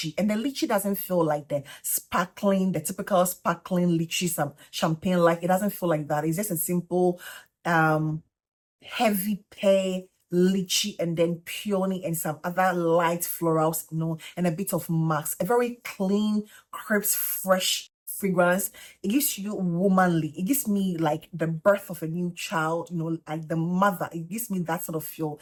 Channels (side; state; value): both; identical; correlation 1.00